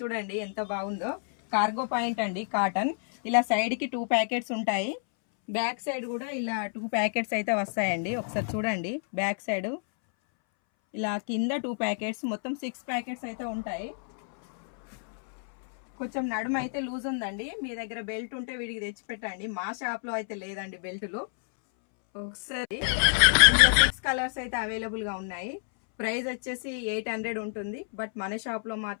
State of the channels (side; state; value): right; silent; 59 dB below the other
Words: చూడండి ఎంత బాగుందో. కార్గో పాయింట్ అండి, కాటన్. ఇలా సైడ్ కి 2 ప్యాకెట్స్ ఉంటాయి. బ్యాక్ సైడ్ కూడా ఇలా 2 ప్యాకెట్స్ అయితే వస్తాయండి. ఒకసారి చూడండి బ్యాక్ సైడ్. ఇలా కింద 2 ప్యాకెట్స్, మొత్తం 6 ప్యాకెట్స్ అయితే ఉంటాయి. కొంచెం నడుము అయితే లూజ్ ఉందండి. మీ దగ్గర బెల్ట్ ఉంటే వీడికి తెచ్చి పెట్టండి. మా షాప్ లో అయితే లేదండి బెల్టులు. ఒకసారి 6 కలర్స్ అయితే అవైలబుల్ గా ఉన్నాయి. ప్రైస్ వచ్చేసి 800 ఉంటుంది. బట్ మన షాప్ లో